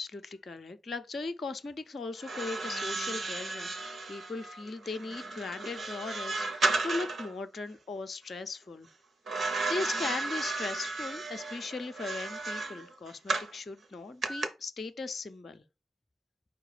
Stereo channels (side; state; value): both; normal; correlation 0.82